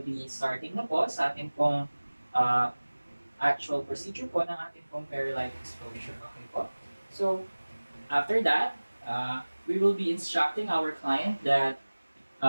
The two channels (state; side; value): inverted; both; correlation -1.00